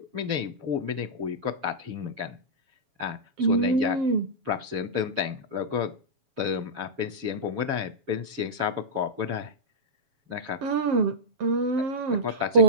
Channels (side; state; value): left; late; 7.2 ms